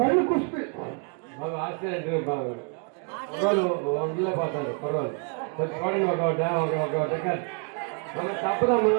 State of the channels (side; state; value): left; quieter; 38.8 dB